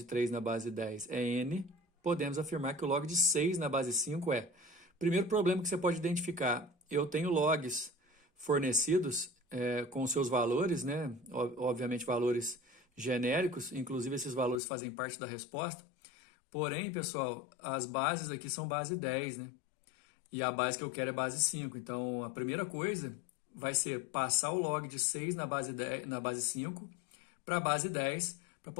3 na base 10 é n, podemos afirmar que o log de 6 na base 5 é. Primeiro problema que você pode identificar, eu tenho logs fornecidos com seus valores, né? Obviamente valores genéricos, inclusive esses valores fazem parte da resposta. Porém, pessoal, as bases aqui são base 10, né? E a base que eu quero é base 5. Então, a primeira coisa vai ser passar o log de 6 na base 5 para a base 10, para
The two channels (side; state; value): right; drops out; at 14.6 s